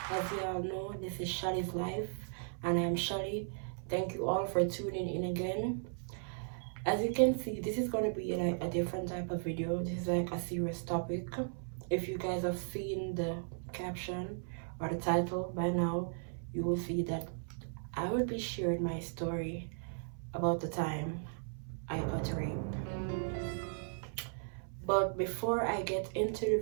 As you all know, this is Shali's Life, and I'm Shalii. Thank you all for tuning in again. As you can see, this is going to be like a different type of video. This is like a serious topic. If you guys have seen the caption or the title by now, you will see that I will be sharing my story about the time I got raped. But before I get into the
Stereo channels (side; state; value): left; silent; 54 dB below the other